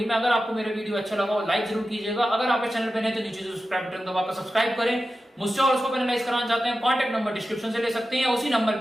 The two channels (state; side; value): normal; both; correlation 0.93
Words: में। अगर आपको मेरा वीडियो अच्छा लगा हो लाइक जरूर कीजिएगा, अगर आप इस चैनल पे नए तो नीचे सब्सक्राइब बटन दबाकर सब्सक्राइब करें। मुझसे और उसको पेनलाइज कराना चाहते हैं कॉन्टैक्ट नंबर डिस्क्रिप्शन से ले सकते हैं, या उसी नंबर